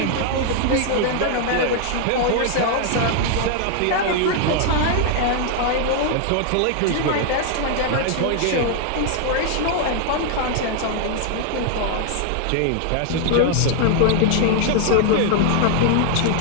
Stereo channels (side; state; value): both; different; correlation 0.00